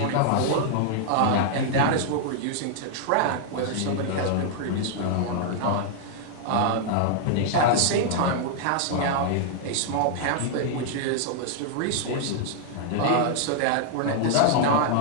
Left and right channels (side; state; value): both; different; correlation -0.01